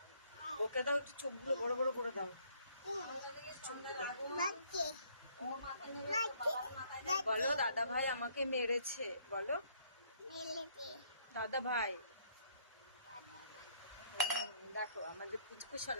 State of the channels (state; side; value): inverted; both; correlation -0.65